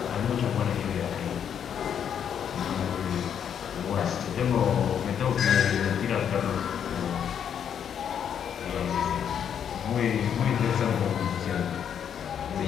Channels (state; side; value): quieter; right; 8.5 dB